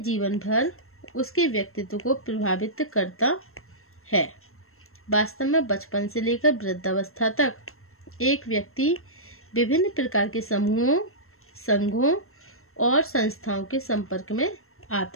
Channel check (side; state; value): right; late; 0.62 ms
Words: भर उसके व्यक्तित्व को प्रभावित करता है। वास्तव में बचपन से लेकर वृद्धावस्था तक एक व्यक्ति विभिन्न प्रकार के समूहों, संघों और संस्थाओं के संपर्क में